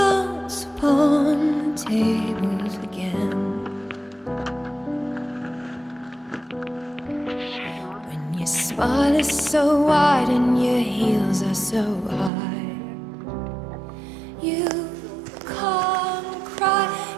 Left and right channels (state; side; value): drops out; left; at 12.3 s